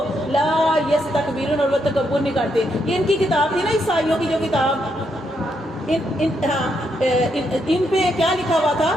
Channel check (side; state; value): both; normal; correlation 0.78